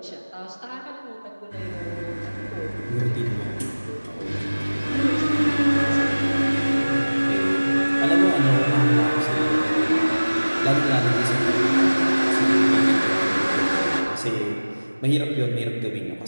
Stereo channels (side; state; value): both; inverted; correlation -1.00